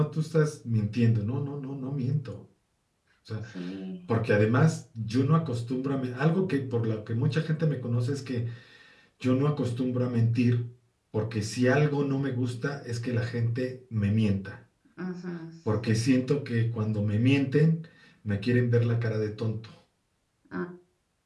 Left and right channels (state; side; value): identical; both; correlation 1.00